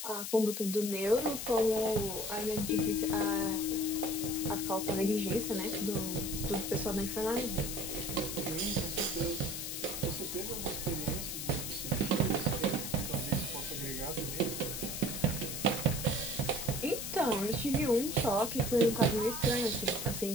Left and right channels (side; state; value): left; noise; hiss, 5 dB below the sound